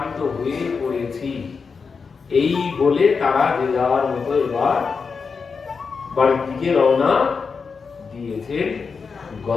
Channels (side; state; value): right; quieter; 5.3 dB